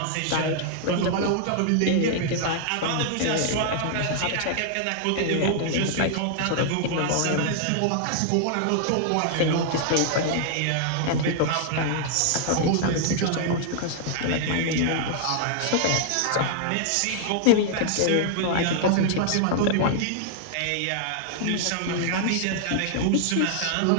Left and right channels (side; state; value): both; different; correlation 0.00